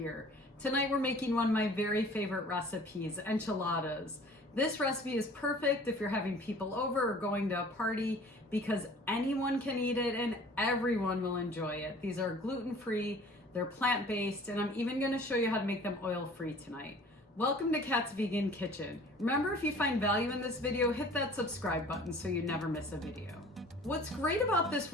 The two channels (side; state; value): both; normal; correlation 0.48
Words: Tonight we're making one of my very favorite recipes, enchiladas. This recipe is perfect if you're having people over or going to a party because anyone can eat it and everyone will enjoy it. These are gluten-free, they're plant-based, and I'm even going to show you how to make them oil-free tonight. Welcome to Kat's Vegan Kitchen. Remember, if you find value in this video, hit that subscribe button so you never miss a video. What's great about this